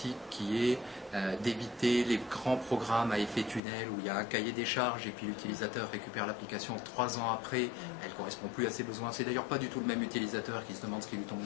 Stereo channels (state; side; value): drops out; right; at 3.6 s